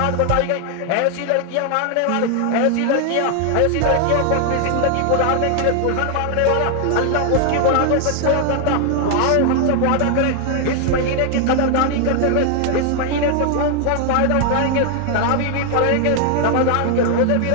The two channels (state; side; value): different; both; correlation 0.00